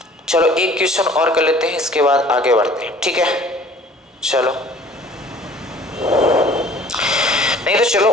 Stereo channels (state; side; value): normal; both; correlation 0.50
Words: चलो एक क्वेश्चन और कर लेते हैं, इसके बाद आगे बढ़ते हैं, ठीक है। चलो नहीं तो चलो,